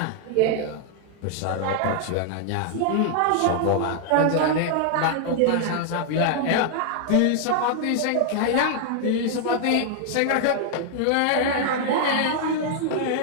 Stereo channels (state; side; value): different; both; correlation 0.00